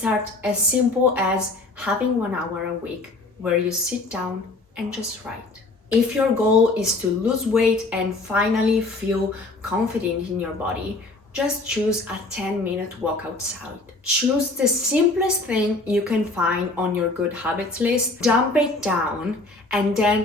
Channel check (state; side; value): quieter; right; 3.2 dB